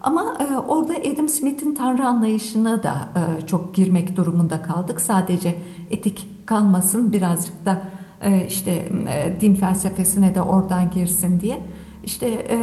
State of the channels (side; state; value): both; identical; correlation 1.00